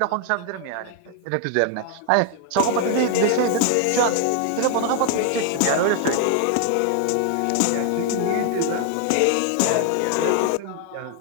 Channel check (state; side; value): different; both; correlation 0.00